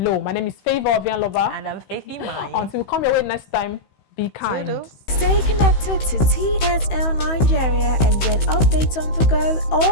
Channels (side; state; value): right; late; 16 ms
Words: My name is Favor Ovianlova. And I'm Faithy Mai. Until we come your way next time, be kind. Toodles. Stay connected to TSL Nigeria and get updates on the go